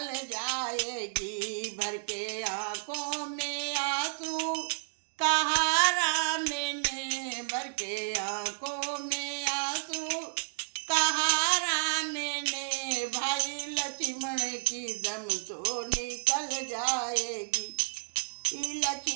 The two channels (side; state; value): left; silent; digital silence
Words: जाएगी। भर के आँखों में आंसू कहा राम ने, भर के आँखों में आंसू कहा राम ने, भाई लक्ष्मण की दम तो निकल जाएगी,